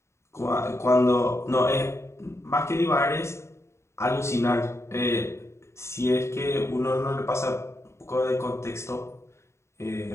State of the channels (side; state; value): right; late; 0.13 ms